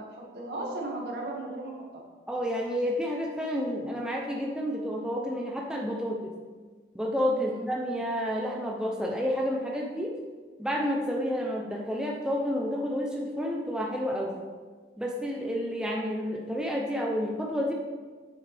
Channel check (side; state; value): both; normal; correlation 0.67